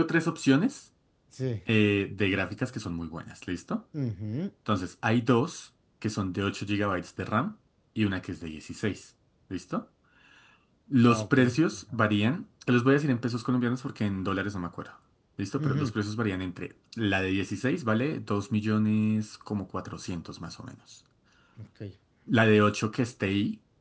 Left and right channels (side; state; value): both; identical; correlation 1.00